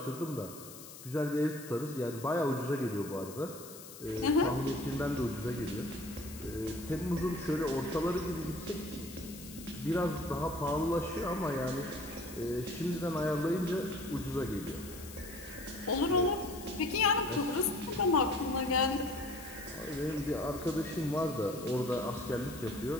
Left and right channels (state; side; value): noise; left; hiss, 15 dB below the sound